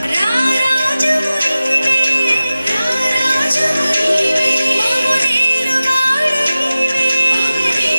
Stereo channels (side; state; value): both; inverted; correlation -0.96